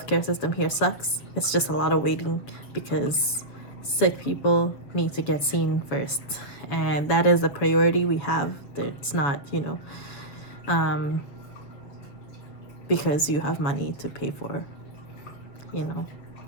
system here sucks. It's just a lot of waiting, because sick people need to get seen first, and that is a priority we have. It's not, you know, because you have money to pay for, you know.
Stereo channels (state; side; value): late; right; 7.3 ms